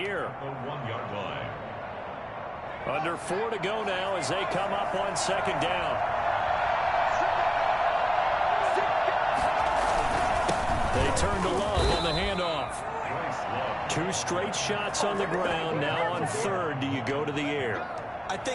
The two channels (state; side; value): identical; both; correlation 1.00